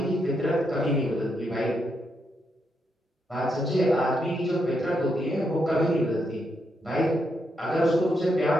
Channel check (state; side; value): normal; both; correlation 0.80